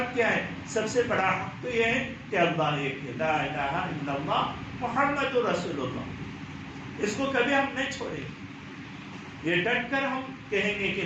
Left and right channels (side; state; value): both; identical; correlation 1.00